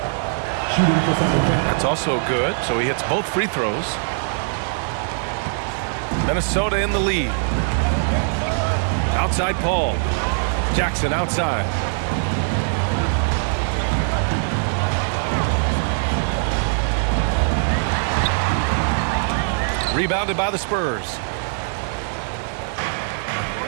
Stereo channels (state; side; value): silent; left; 65 dB below the other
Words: That's also good. So he hits both free throws. Minnesota in the lead. Outside Paul. Jackson outside. Rebounded by the Spurs.